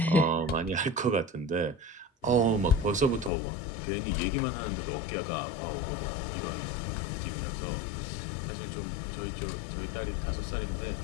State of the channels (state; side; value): drops out; right; at 3.3 s